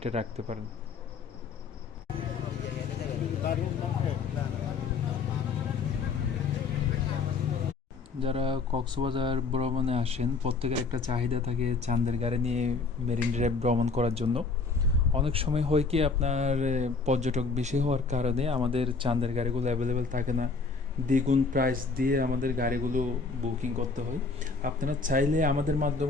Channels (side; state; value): right; quieter; 4.3 dB